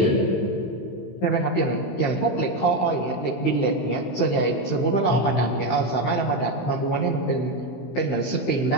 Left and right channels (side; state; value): right; late; 16 ms